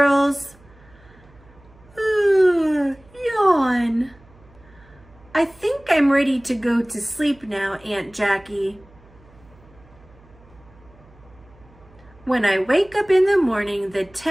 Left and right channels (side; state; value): right; noise; hum, 26 dB below the sound